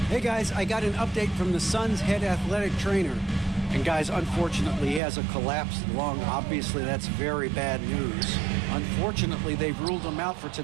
Hey guys, I got an update from the Suns head athletic trainer. And guys, unfortunately, he has a collapsed lung. Obviously, that's very bad news. Unfortunately, they've ruled him out for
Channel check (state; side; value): drops out; left; at 5.0 s